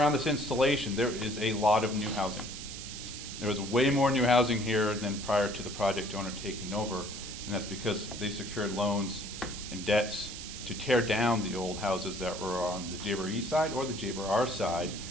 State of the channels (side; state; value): right; noise; hiss, 10 dB below the sound